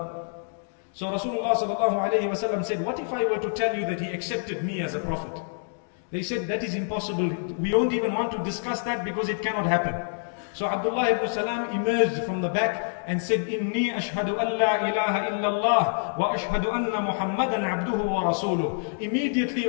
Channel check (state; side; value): silent; right; digital silence